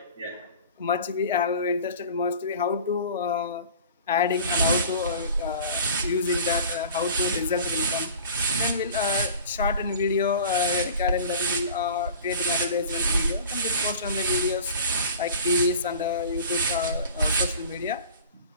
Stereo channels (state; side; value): inverted; both; correlation -0.41